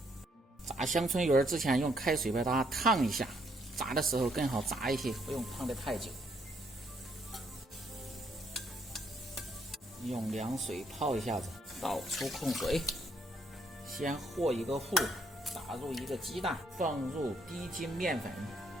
炸香椿鱼儿之前用开水把它烫一下，炸的时候更好炸一些，不用烫得太久。用凉水泡一下子，倒出控水。先和一个糊，打入一个鸡蛋，放入低筋面粉，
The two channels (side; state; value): both; normal; correlation 0.70